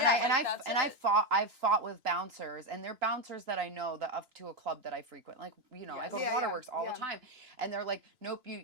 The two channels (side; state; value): left; late; 2.9 ms